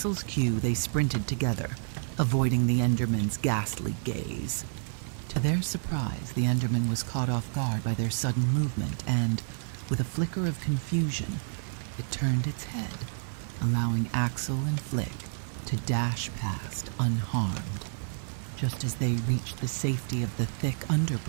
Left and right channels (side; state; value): left; silent; digital silence